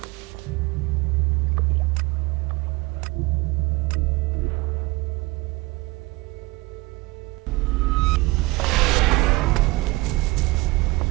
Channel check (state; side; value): quieter; left; 22.7 dB